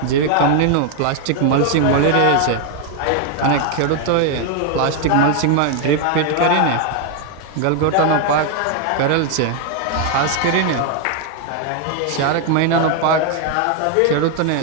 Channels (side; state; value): both; different; correlation 0.01